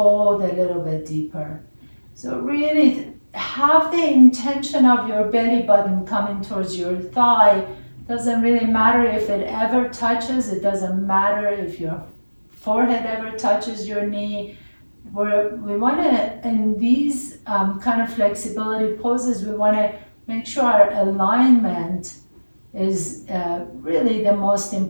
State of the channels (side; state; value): both; inverted; correlation -1.00